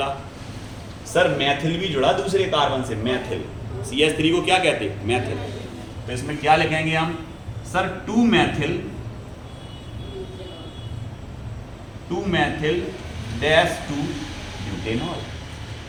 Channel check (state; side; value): identical; both; correlation 1.00